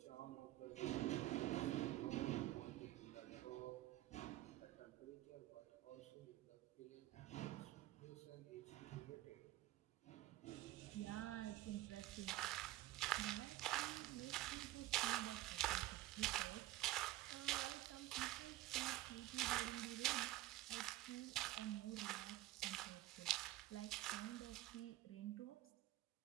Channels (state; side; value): quieter; left; 16.3 dB